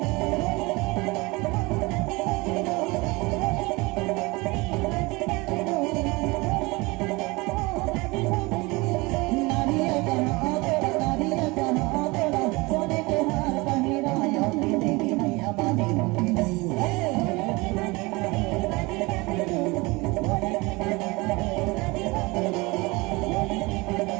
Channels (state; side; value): quieter; left; 24.2 dB